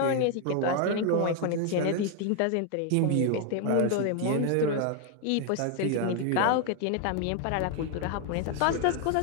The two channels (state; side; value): different; both; correlation 0.01